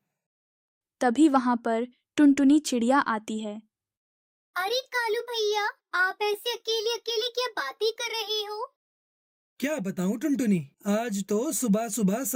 तभी वहां पर टुनटुनी चिड़िया आती है। अरे कालू भैया, आप ऐसे अकेले अकेले क्या बातें कर रहे हो? क्या बताऊं टुनटुनी, आज तो सुबह सुबह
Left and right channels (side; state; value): both; identical; correlation 1.00